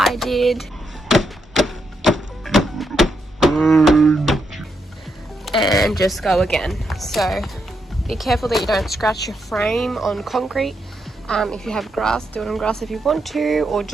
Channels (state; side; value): normal; both; correlation 0.81